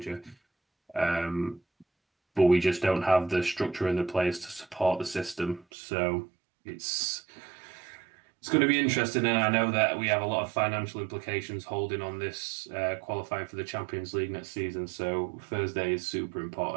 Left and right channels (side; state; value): left; drops out; at 5.7 s